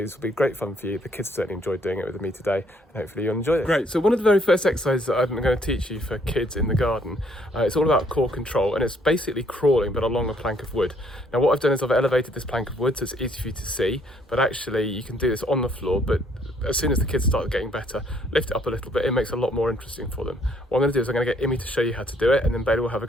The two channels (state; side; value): normal; both; correlation 0.66